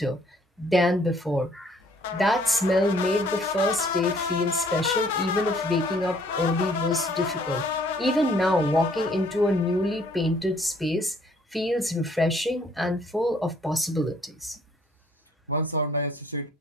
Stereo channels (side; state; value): both; normal; correlation 0.62